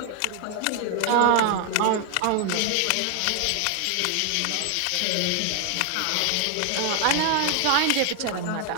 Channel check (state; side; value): different; both; correlation 0.00